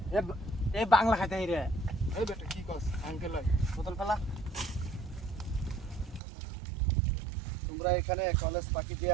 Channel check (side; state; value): left; drops out; at 6.2 s